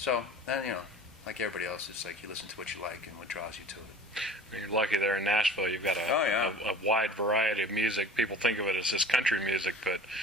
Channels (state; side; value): normal; both; correlation 0.43